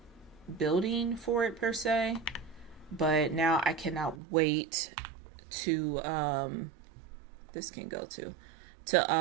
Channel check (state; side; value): drops out; left; at 4.2 s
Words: building for it per se. But now I cannot wait to this can go to